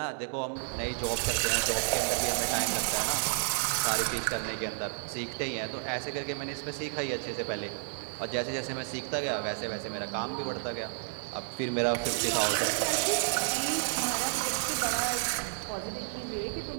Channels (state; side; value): silent; left; digital silence